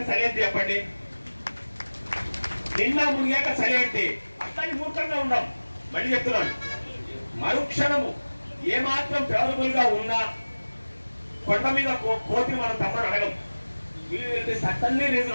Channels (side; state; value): both; inverted; correlation -1.00